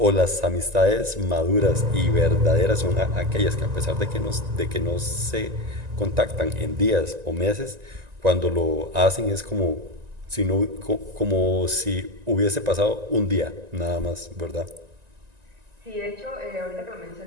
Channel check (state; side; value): late; left; 1.9 ms